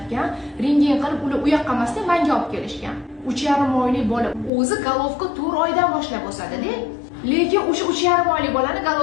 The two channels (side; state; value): right; drops out; at 4.5 s